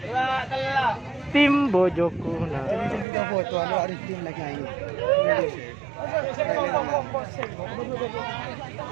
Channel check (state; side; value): drops out; left; at 3.1 s